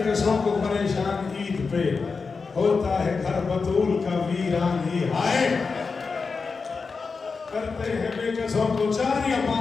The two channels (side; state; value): right; quieter; 4.7 dB